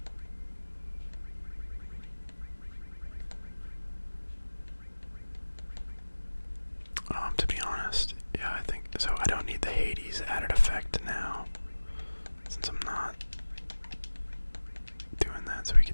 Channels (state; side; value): inverted; both; correlation -1.00